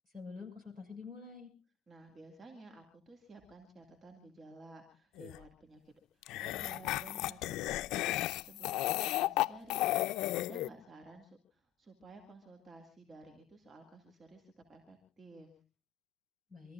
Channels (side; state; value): right; quieter; 13.7 dB